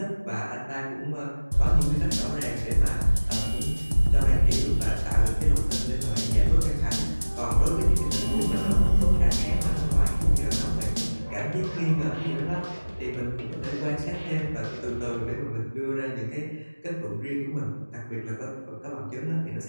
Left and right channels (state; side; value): inverted; both; correlation -1.00